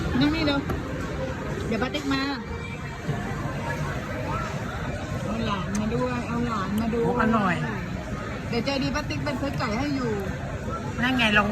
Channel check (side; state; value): both; identical; correlation 1.00